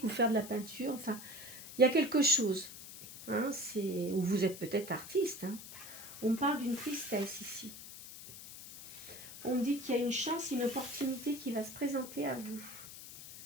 ou faire de la peinture. Enfin, il y a quelque chose. Hein, ou vous êtes peut-être artiste. Hein. On parle d'une tristesse ici. On me dit qu'il y a une chance, une opportunité qui va se présenter à vous.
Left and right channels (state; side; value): noise; left; hiss, 13 dB below the sound